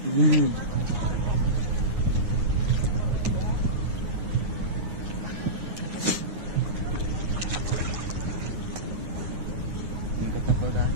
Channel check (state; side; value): late; left; 9.6 ms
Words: Ingkat na po